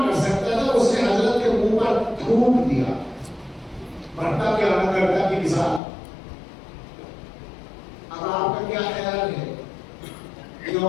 کر سکتا تھا، اس نے حضرت کے منہ پر تھوک دیا، بھٹا کے آنا کرتا کی مثال. اب آپ کا کیا خیال ہے کہ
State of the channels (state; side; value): drops out; right; at 5.8 s